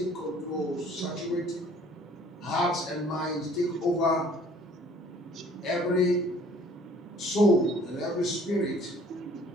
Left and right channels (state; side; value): normal; both; correlation 0.55